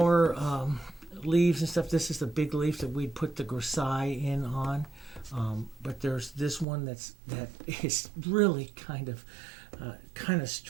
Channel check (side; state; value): left; drops out; at 6.7 s